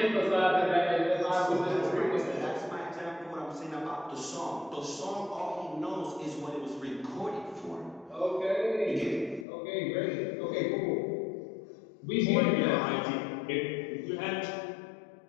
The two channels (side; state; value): right; drops out; at 9.5 s